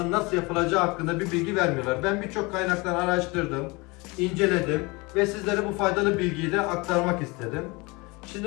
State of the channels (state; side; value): quieter; right; 25.8 dB